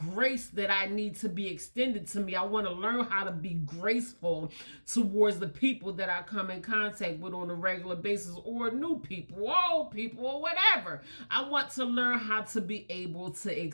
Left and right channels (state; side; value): inverted; both; correlation -1.00